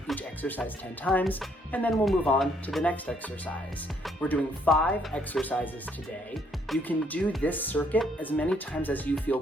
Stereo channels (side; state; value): both; normal; correlation 0.68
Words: each exercise 10 times and then we'll move on to the next exercise. We're doing 5 exercises today. You can do this circuit as many times as you feel